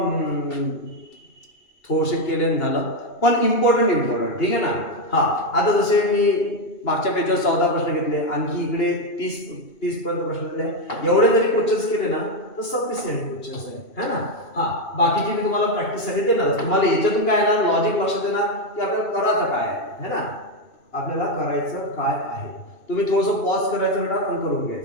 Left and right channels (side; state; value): right; late; 2.7 ms